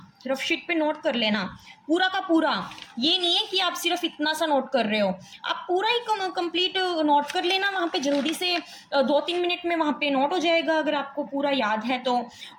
रफ शीट पे नोट कर लेना पूरा का पूरा। ये नहीं है कि आप सिर्फ इतना सा नोट कर रहे हो, आप पूरा ही कंप्लीट नोट कर लेना वहाँ पे, जल्दी से 2-3 मिनट में वहाँ पे नोट हो जाएगा अगर आपको पूरा याद है तो।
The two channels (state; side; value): identical; both; correlation 1.00